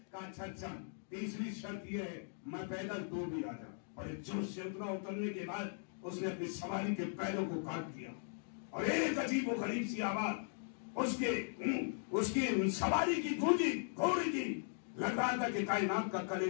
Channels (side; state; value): right; silent; digital silence